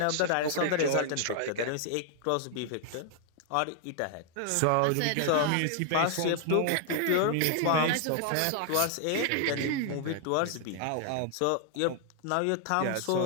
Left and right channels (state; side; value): different; both; correlation 0.00